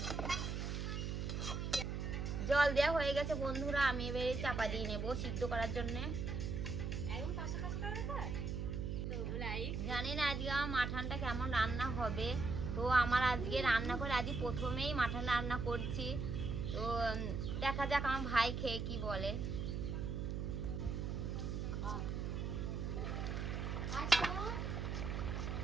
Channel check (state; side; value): noise; right; hum, 2 dB below the sound